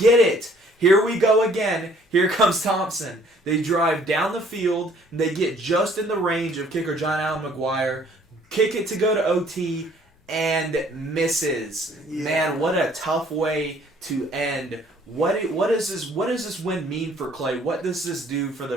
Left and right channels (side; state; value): both; normal; correlation 0.59